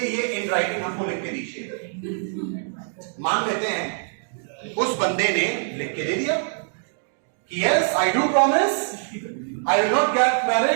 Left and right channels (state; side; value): silent; left; digital silence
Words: इन राइटिंग हमको लिख के दीजिए। मान लेते हैं उस बंदे ने लिख के दे दिया कि yes I do promise I will not get